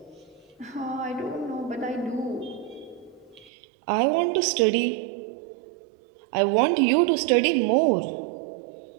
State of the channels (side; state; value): left; drops out; at 3.5 s